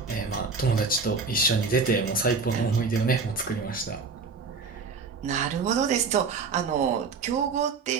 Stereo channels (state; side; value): quieter; left; 4.7 dB